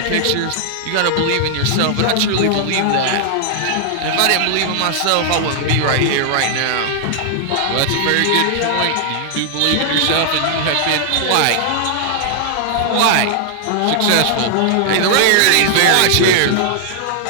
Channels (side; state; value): both; different; correlation 0.00